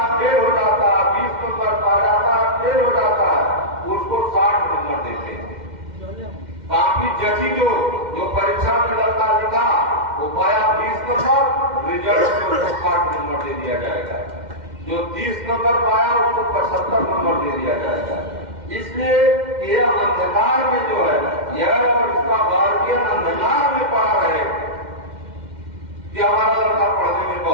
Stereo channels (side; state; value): left; late; 2.1 ms